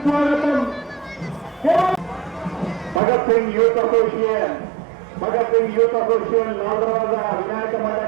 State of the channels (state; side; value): drops out; left; at 3.0 s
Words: భగత్ సింగ్ యూత్ అసోసియేషన్ లాల్దర్వాజా వినాయక